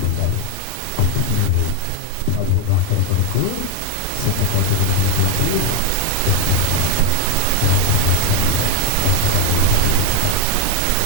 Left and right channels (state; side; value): different; both; correlation -0.01